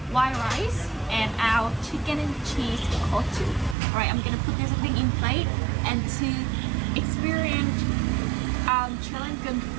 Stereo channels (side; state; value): left; drops out; at 3.8 s